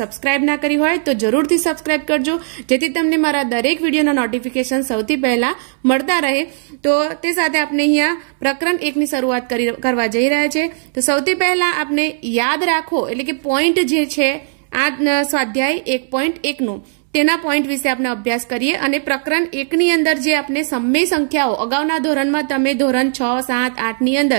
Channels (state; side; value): silent; left; 68 dB below the other